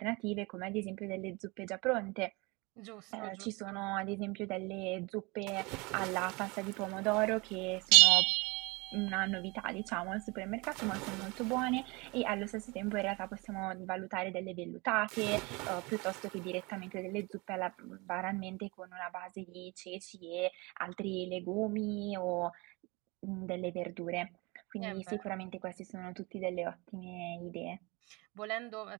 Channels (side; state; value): left; quieter; 26.2 dB